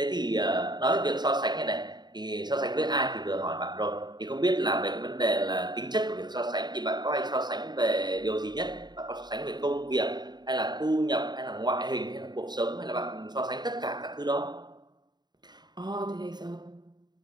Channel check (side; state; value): left; late; 0.20 ms